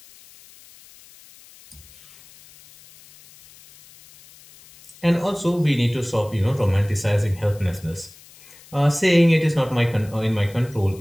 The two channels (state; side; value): noise; left; hiss, 24 dB below the sound